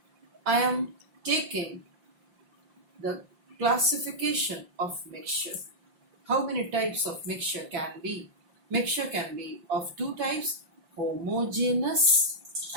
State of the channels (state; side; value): late; left; 5.7 ms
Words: I am taking the classification of mixture. How many types of mixture can be? Mixture can be of two types, homogeneous